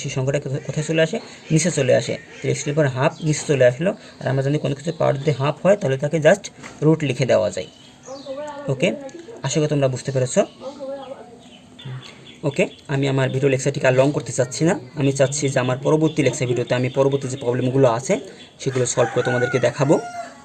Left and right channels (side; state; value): both; identical; correlation 1.00